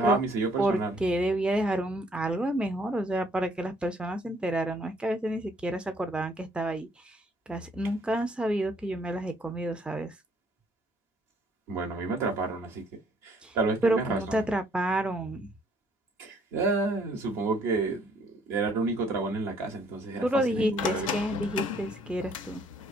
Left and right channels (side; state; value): both; normal; correlation 0.64